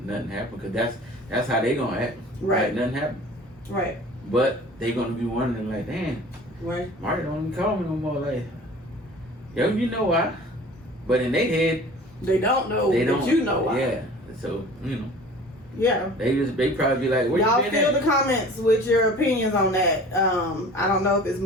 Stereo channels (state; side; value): normal; both; correlation 0.44